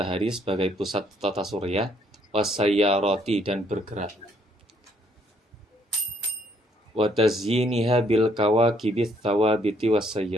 sebagai pusat tata surya, wasayyarati, dan bergerak. Wa tazyiniha bil kawakibits thawabiti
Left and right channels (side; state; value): both; normal; correlation 0.67